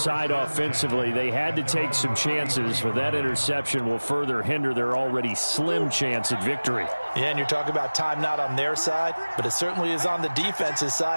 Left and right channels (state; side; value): inverted; both; correlation -1.00